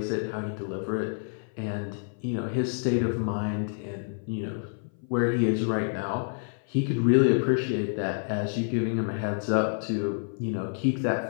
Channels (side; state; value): right; silent; 57 dB below the other